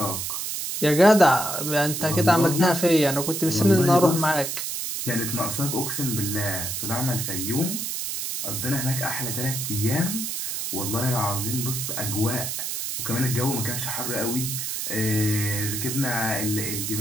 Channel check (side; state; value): right; noise; hiss, 3 dB below the sound